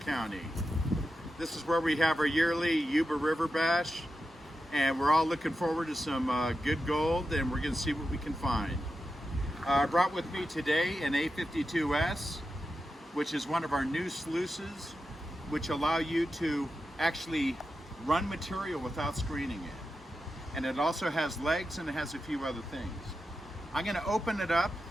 This is where we have our yearly Yuba River Bash, and we're all looking forward to some good gold, and we're going to see what we can find. I brought with me today an A52S, which is one of our new sluices, which allow you to actually run material without screening it. And it also has legs, and it has a few other things. I'm going to open it up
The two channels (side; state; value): both; normal; correlation 0.90